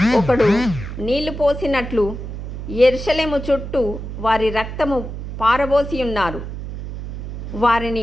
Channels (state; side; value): noise; right; hum, 8 dB below the sound